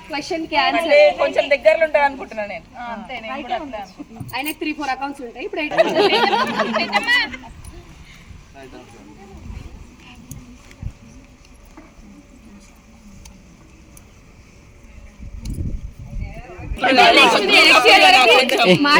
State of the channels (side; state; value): both; identical; correlation 1.00